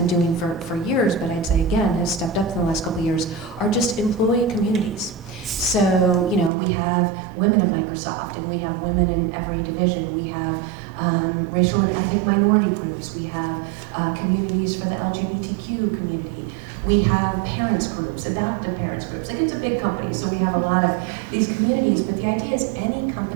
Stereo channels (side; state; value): left; drops out; at 6.5 s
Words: doing for years, but I'd say again has stepped up in the last couple of years, are just employee communities. So, we have women at Microsoft, and we have women in every division. We have racial and ethnic minority groups. We have communities for the LGBTQ community. We have parents groups, adoptive parents groups. Like, it's a big company, so we have a lot of these communities, but the idea is any